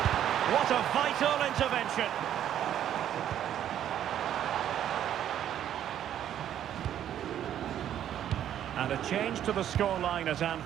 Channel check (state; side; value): quieter; left; 10.6 dB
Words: What a vital intervention. And a change to the scoreline at